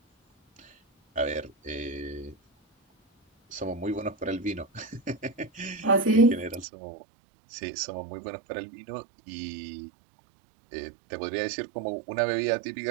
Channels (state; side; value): drops out; left; at 6.7 s